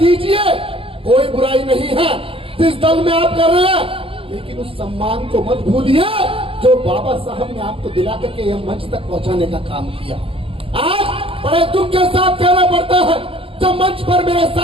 कोई बुराई नहीं है जिस दल में आप कर रहे हैं, लेकिन उस सम्मान को मत भूलिए जो बाबा साहब ने आपको दिला करके यह मंच तक पहुंचाने का काम किया। आज बड़े दुख के साथ कहना पड़ता है, जब मंच पर मेरे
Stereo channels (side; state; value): left; late; 0.27 ms